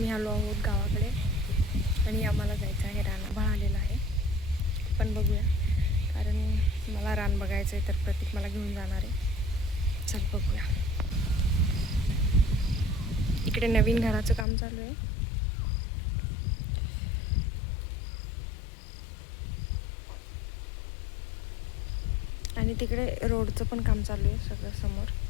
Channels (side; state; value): right; drops out; at 14.5 s